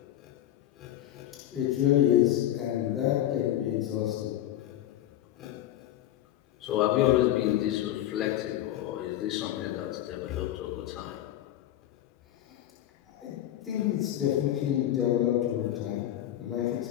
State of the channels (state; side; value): quieter; right; 12.7 dB